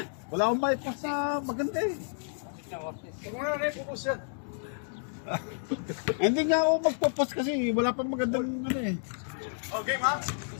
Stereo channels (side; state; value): right; silent; digital silence